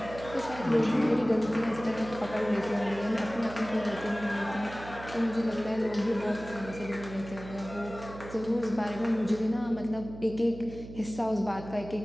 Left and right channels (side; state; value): right; noise; hum, 13 dB below the sound